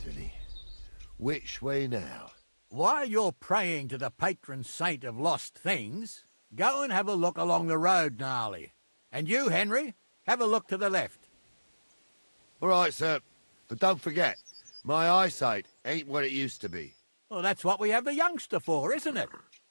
Which way now? While you're praying to the patron saint of lost things, go and have a look along the road, Gnarly. And you, Henry, have a look to the left. All right, sir. But don't forget, my eyesight ain't what it used to be. Well, that's what we have the youngster for, isn't it?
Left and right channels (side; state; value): both; inverted; correlation -1.00